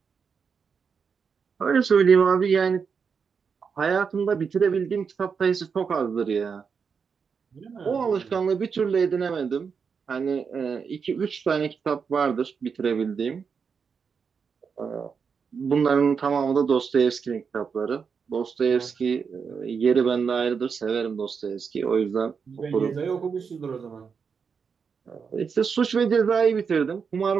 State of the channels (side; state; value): left; quieter; 6.0 dB